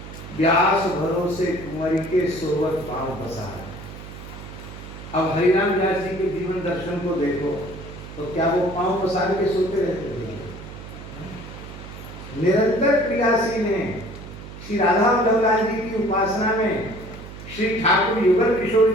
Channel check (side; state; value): right; noise; hum, 13 dB below the sound